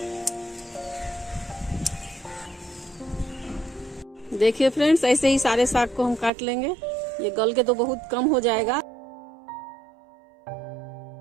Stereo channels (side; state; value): left; drops out; at 6.3 s